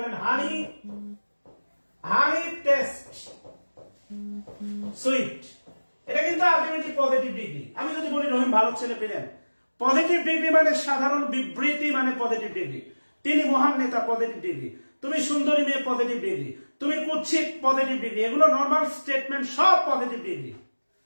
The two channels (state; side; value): inverted; both; correlation -1.00